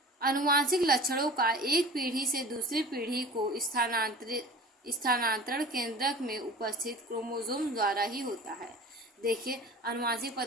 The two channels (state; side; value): normal; both; correlation 0.40